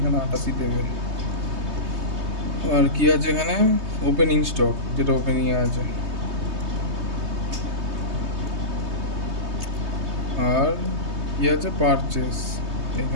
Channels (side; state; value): left; late; 3.2 ms